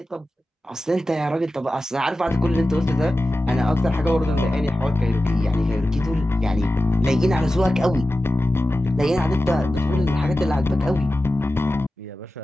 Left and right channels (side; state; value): both; normal; correlation 0.94